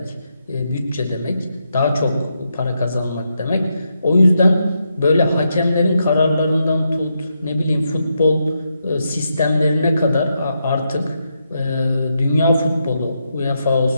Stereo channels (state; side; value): inverted; both; correlation -0.83